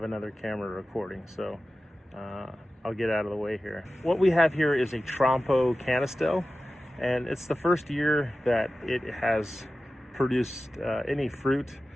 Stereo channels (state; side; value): normal; both; correlation 0.95